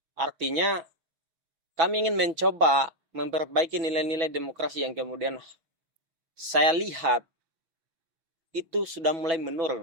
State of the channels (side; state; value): left; late; 6.1 ms